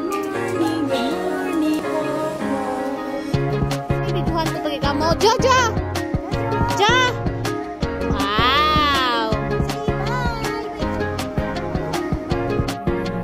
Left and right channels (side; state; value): both; identical; correlation 1.00